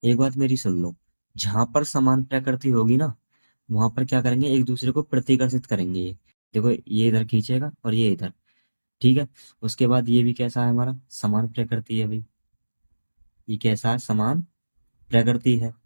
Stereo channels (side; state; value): both; inverted; correlation -1.00